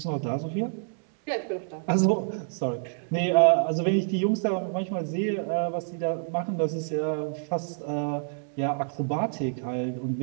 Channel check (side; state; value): left; silent; digital silence